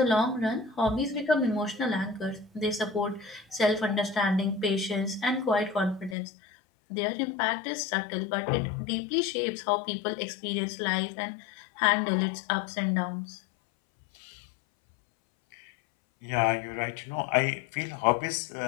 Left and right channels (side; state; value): right; drops out; at 6.2 s